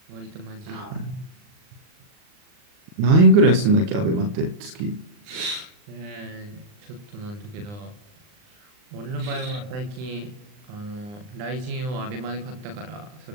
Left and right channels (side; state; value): left; late; 39 ms